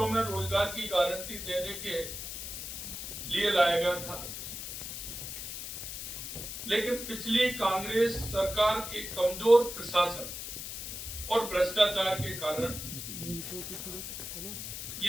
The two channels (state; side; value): noise; left; hiss, 7 dB below the sound